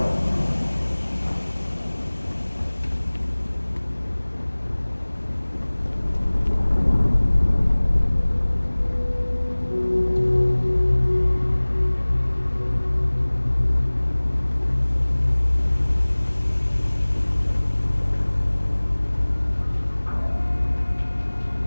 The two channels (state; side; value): inverted; both; correlation -1.00